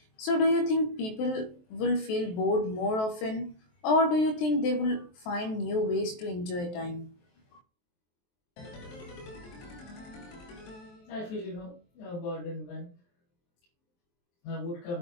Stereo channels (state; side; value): late; right; 23 ms